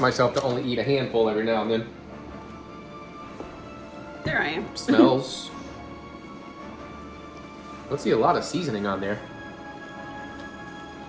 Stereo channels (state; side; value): identical; both; correlation 1.00